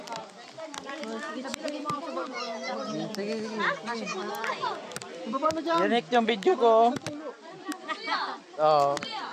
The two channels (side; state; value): both; identical; correlation 1.00